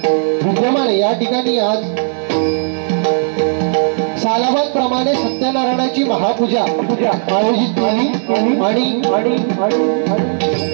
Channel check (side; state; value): left; silent; 56 dB below the other